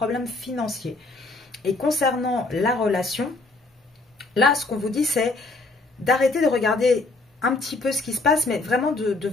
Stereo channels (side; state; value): right; quieter; 3.3 dB